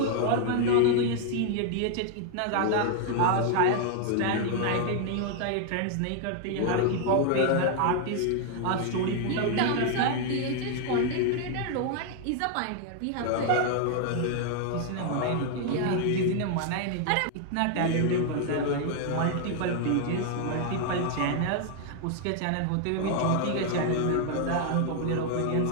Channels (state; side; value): different; both; correlation 0.00